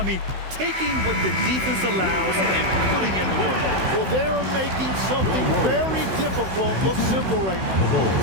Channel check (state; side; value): late; left; 16 ms